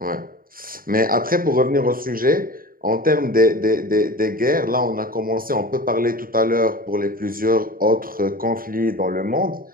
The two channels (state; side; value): late; left; 0.41 ms